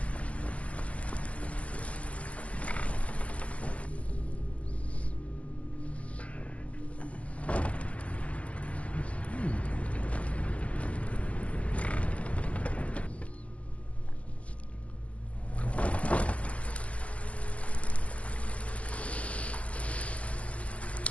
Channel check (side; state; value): right; late; 0.064 ms